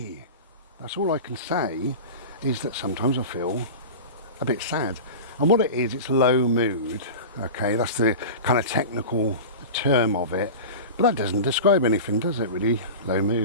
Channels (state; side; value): inverted; both; correlation -0.30